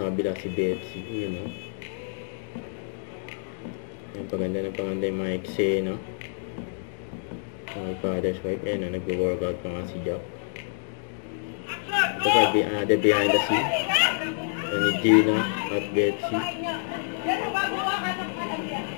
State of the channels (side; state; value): right; silent; digital silence